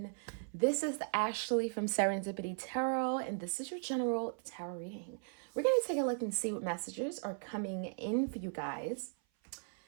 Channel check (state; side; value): silent; left; 53 dB below the other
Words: This is Ashley from Serendipity Tarot, and this is your general tarot reading. We're going to take a look and see what messages are coming in for you guys